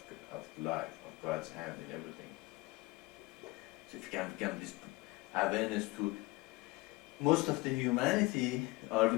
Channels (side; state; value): right; quieter; 22.1 dB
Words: of life, of God's hand in everything. So if you can become this awareness to most of the humanity, are we